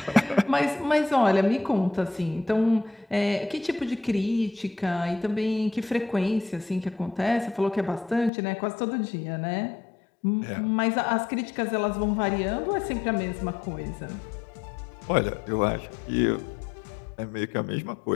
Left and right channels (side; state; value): right; drops out; at 8.3 s